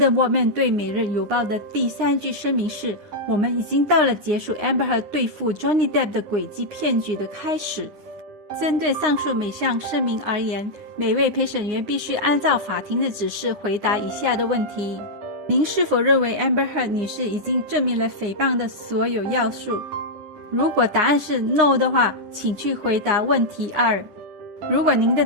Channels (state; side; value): late; left; 9.7 ms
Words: Waldman 对每日邮报的第3句声明是，我们已经到了结束 Amber 和对付 Johnny Depp 的诡计骗局的开始。针对上述每项声明而言，每位陪审员必须按照法庭的指示回答以下的问题：您是否认为 Amber Heard 女士已经证明了诽谤的所有要素？如果答案是 no 的话，请去回答问题2。如果您的